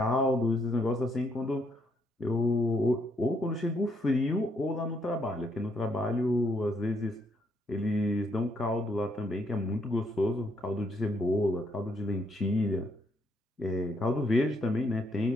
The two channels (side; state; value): both; normal; correlation 0.73